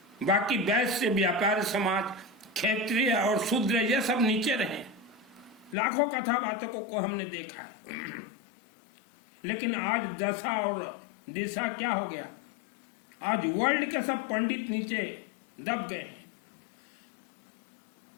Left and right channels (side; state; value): right; drops out; at 5.8 s